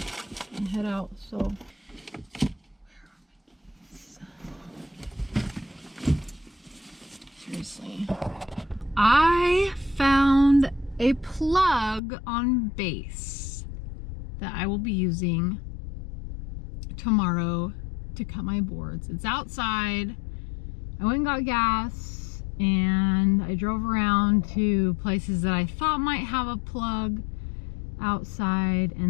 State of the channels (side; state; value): right; drops out; at 12.0 s